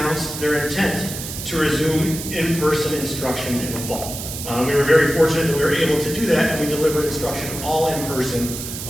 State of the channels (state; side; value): noise; right; hiss, 8 dB below the sound